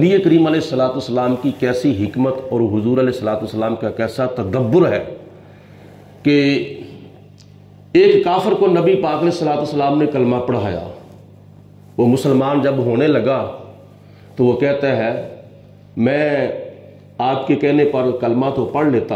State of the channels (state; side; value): identical; both; correlation 1.00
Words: کریم علیہ الصلوۃ والسلام کی کیسی حکمت اور حضور علیہ الصلوۃ والسلام کا کیسا تدبر ہے کہ ایک کافر کو نبی پاک علیہ الصلوۃ والسلام نے کلمہ پڑھایا، وہ مسلمان جب ہونے لگا تو وہ کہتا ہے میں آپ کے کہنے پر کلمہ تو پڑھ لیتا